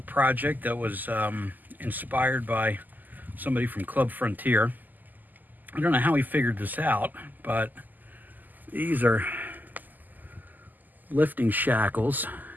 project that was inspired by somebody from Club Frontier. I don't know how he figured this out, but these are lifting shackles.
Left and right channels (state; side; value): late; left; 0.085 ms